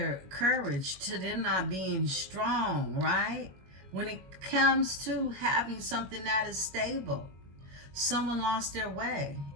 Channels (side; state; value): left; late; 21 ms